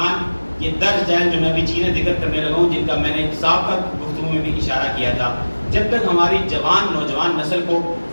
یہ درج ہے جو میں ابھی چیزیں ذکر کرنے لگا ہوں، جن کا میں نے سابقہ گفتگو میں بھی اشارہ کیا تھا، جب تک ہماری نوجوان نسل کو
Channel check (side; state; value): both; inverted; correlation -1.00